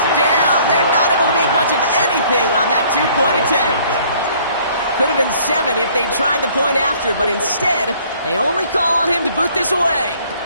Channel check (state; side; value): inverted; both; correlation -0.58